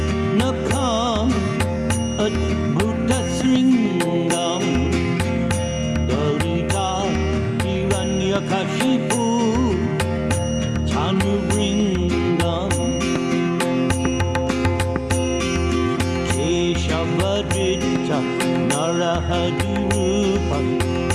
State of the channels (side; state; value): both; identical; correlation 1.00